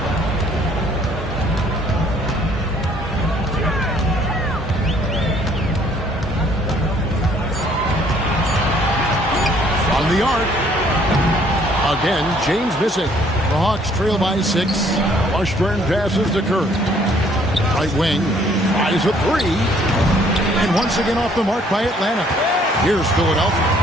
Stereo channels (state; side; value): normal; both; correlation 0.62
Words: From the arc. Again, James missing. The Hawks trail by 6. Washburn passes to Curry. Right wing. Tries a 3. And once again off the mark by Atlanta. Here's Philadelphia.